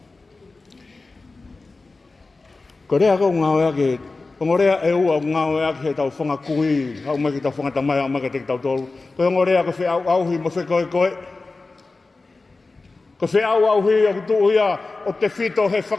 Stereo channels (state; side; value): quieter; right; 3.6 dB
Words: Ko rea kau ngā ue ake, ko rea e ua ngā ue ake he tau whangakui, hau mai ki tau whangatamai, hau mai ki te tau tolu. Ko rea ko whi au auhi mo whi koe. Ko whi au auhi o kutu ia o te whito he